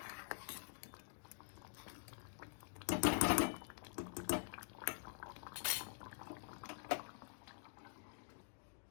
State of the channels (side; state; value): right; silent; digital silence